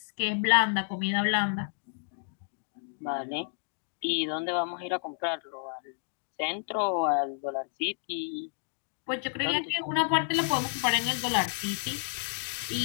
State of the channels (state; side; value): silent; right; 55 dB below the other